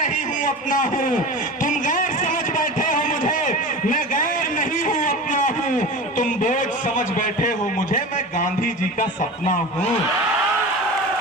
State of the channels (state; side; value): normal; both; correlation 0.31